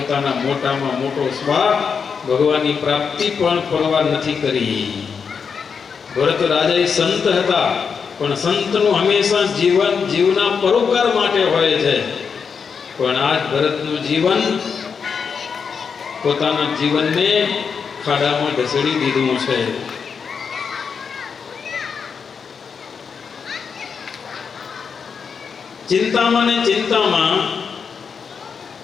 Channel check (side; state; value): right; quieter; 6.1 dB